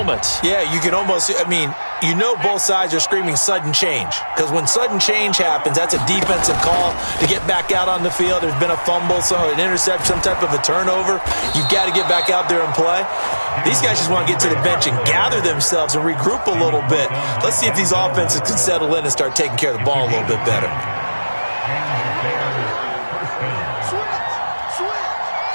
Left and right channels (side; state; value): both; inverted; correlation -1.00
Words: Yeah, you can almost, you know both sides are screaming sudden change. Because when sudden change happens, that's a defensive call to get back out on the field. There's been a fumble, so an interception, some type of a turnover. You've got to get back out there and play. These guys just want to get to the bench and gather themselves and regroup a little bit. Let's see if these offenses can settle in and start taking care of the ball a little bit better.